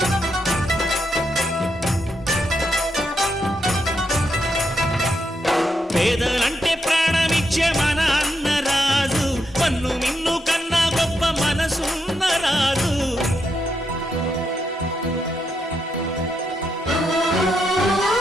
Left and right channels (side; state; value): both; normal; correlation 0.81